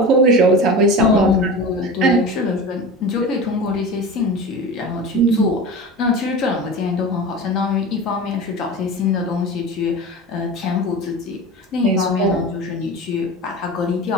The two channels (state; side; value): normal; both; correlation 0.31